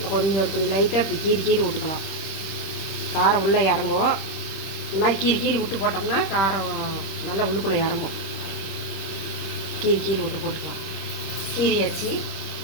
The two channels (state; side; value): late; right; 26 ms